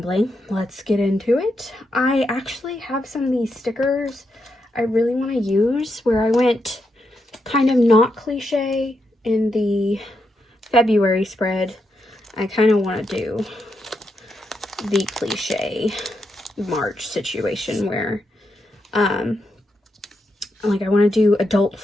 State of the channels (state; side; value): normal; both; correlation 0.83